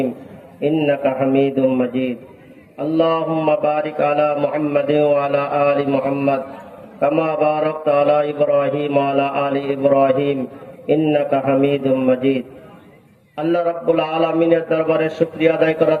ইন্নাকা হামিদুম মাজিদ আল্লাহুম্মা বারিক আলা মুহাম্মাদ ওয়া আলা আলি মুহাম্মাদ কামা বারাকতা আলা ইব্রাহিম ওয়া আলা আলি ইব্রাহিম ইন্নাকা হামিদুম মাজিদ। আল্লাহ রাব্বুল আলামিনের দরবারে শুকরিয়া আদায় করা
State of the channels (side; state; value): both; identical; correlation 1.00